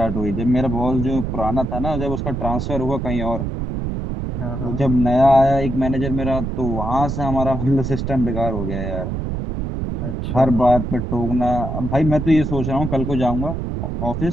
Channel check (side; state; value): right; noise; rumble, 3 dB below the sound